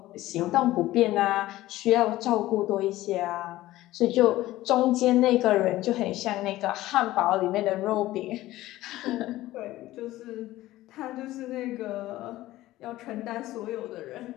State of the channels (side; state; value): right; quieter; 16.2 dB